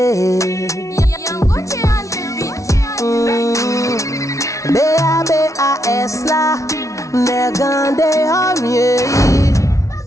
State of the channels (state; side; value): late; right; 0.15 ms